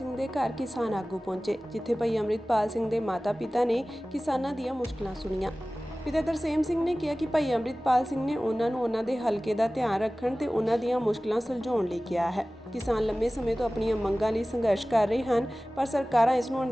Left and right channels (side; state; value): both; normal; correlation 0.97